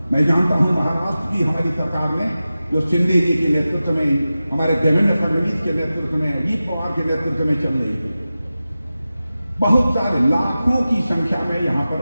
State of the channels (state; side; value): inverted; both; correlation -0.94